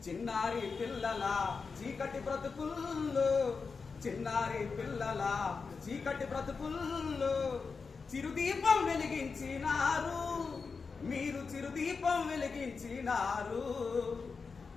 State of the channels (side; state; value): right; quieter; 4.9 dB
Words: చిన్నారి పిల్లల చీకటి బ్రతుకుల్లో, చిన్నారి పిల్లల చీకటి బ్రతుకుల్లో చిరుదీపం వెలిగించినారు, మీరు చిరుదీపం వెలిగించినారు.